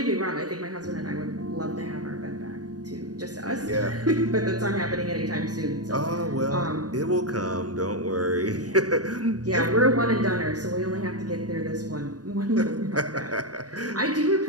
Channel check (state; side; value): late; left; 0.68 ms